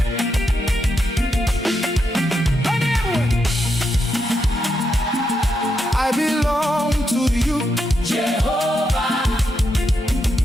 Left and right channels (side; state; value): both; normal; correlation 0.83